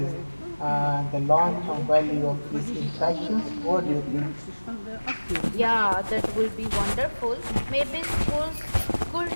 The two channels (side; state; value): both; inverted; correlation -1.00